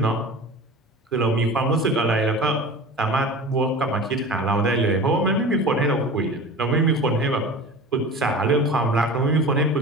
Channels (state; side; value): normal; both; correlation 0.36